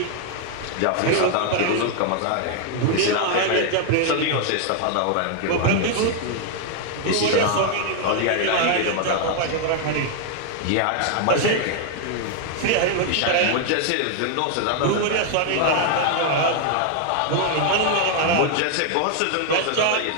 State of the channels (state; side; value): different; both; correlation 0.00